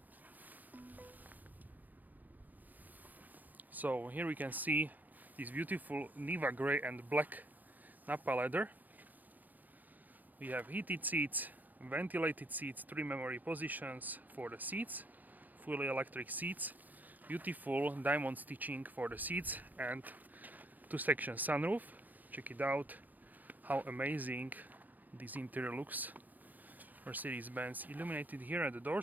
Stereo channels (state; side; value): late; left; 0.083 ms